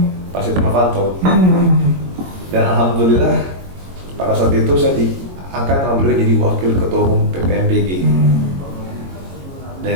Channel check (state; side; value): late; left; 22 ms